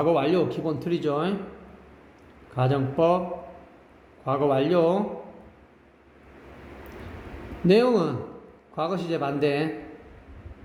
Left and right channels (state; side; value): identical; both; correlation 1.00